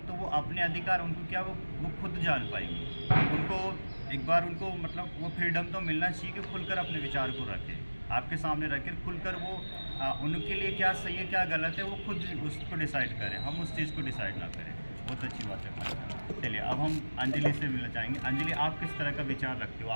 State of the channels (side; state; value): both; inverted; correlation -1.00